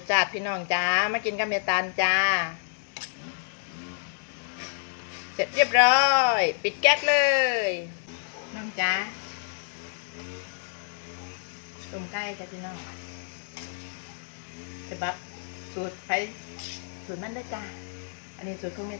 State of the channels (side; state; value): right; silent; 59 dB below the other